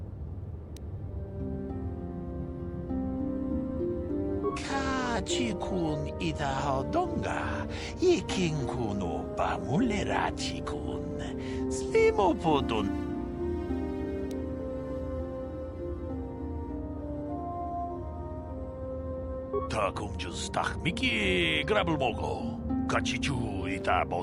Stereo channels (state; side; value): identical; both; correlation 1.00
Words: Chikun ida hodonga, ikin kuno ba mulera chikun, slimo podon. Takum justach miki grabelmogo, kachichu ita